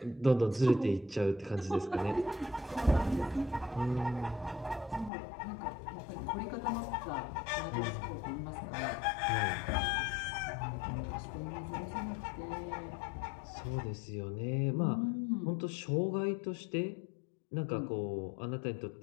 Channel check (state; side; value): drops out; right; at 5.1 s